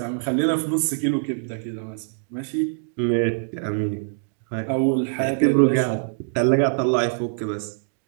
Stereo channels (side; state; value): left; silent; digital silence